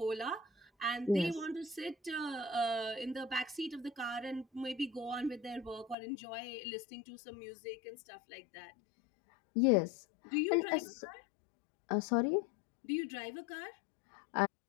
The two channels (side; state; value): right; drops out; at 6.0 s